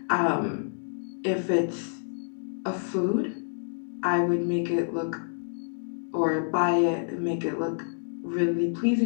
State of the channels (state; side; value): silent; right; digital silence